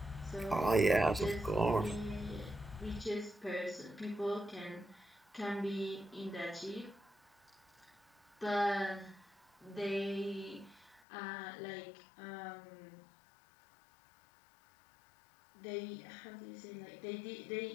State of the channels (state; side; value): drops out; right; at 11.0 s